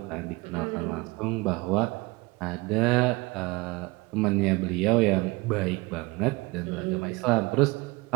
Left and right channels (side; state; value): left; quieter; 23.8 dB